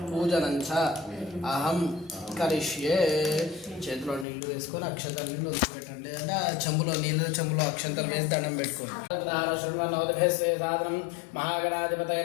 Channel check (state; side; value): drops out; right; at 4.2 s